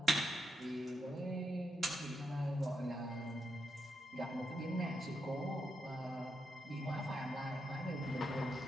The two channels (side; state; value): both; normal; correlation 0.82